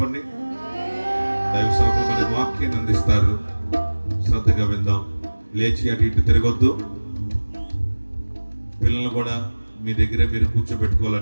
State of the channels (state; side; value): inverted; both; correlation -1.00